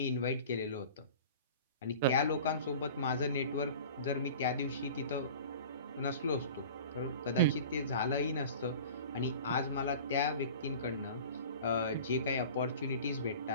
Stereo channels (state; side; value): inverted; both; correlation -0.40